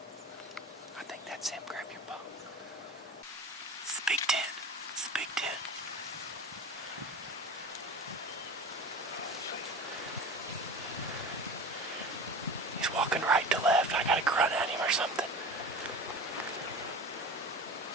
I think that's him. Grab your bow. It's the Big Ten. It's the Big Ten. walking right to left. I gotta grunt at him or something.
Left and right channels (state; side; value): normal; both; correlation 0.34